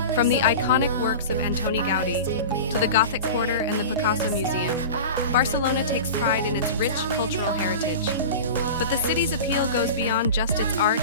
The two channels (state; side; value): inverted; both; correlation -0.31